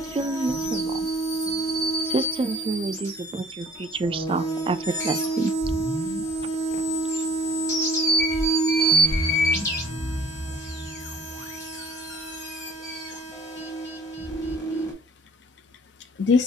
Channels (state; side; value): normal; both; correlation 0.50